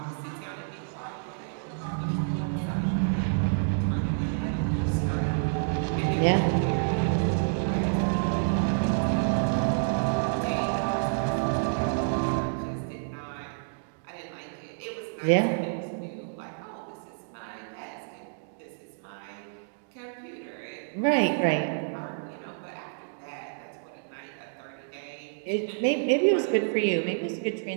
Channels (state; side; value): silent; left; digital silence